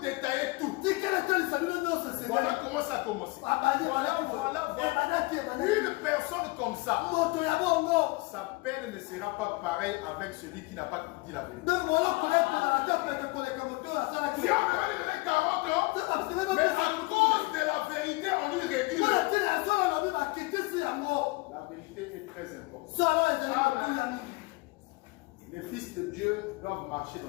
tout. Voilà comment ça a commencé. Voilà. Une personne comme ça, sa peine ne sera pas pareille avec celui qui n'a pas dit la vérité. Si on avait donné 40 ans, mais à cause de la vérité, on lui réduit. La vérité est très importante. Les fils de Dieu doivent marcher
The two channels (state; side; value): quieter; right; 24.0 dB